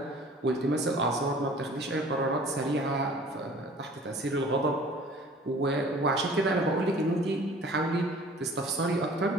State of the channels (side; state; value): both; normal; correlation 0.48